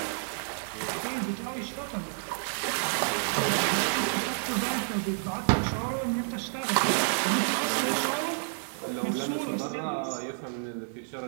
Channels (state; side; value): silent; left; digital silence